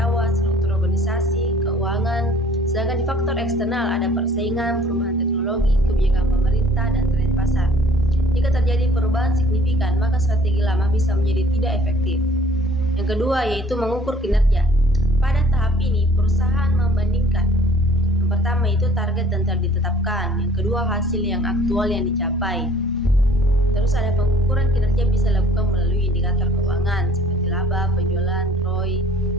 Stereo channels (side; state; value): both; normal; correlation 0.55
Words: struktur organisasi, keuangan. Sedangkan di faktor eksternal ada persaingan, perubahan teknologi, kebijakan pemerintah, dan tren pasar. Jika terjadi perubahan signifikan, maka strategi lama bisa menjadi tidak efektif. Yang kedua yaitu mengukur kinerja. Pada tahap ini, perusahaan membandingkan. Yang pertama itu target dan telah ditetapkan. Yang kedua hasil yang aktual yang dicapai. Terus ada pengukuran kinerja bisa dilakukan melalui indikator keuangan seperti laba, penjualan, ROI,